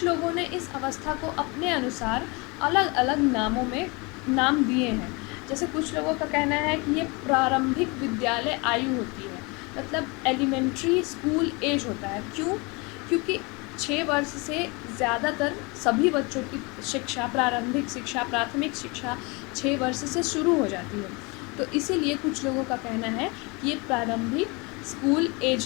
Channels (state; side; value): quieter; right; 28.0 dB